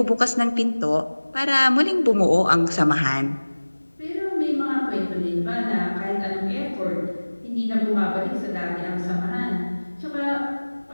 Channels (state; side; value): inverted; both; correlation -1.00